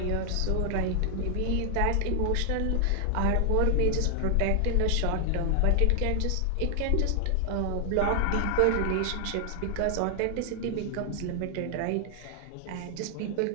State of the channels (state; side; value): different; both; correlation 0.00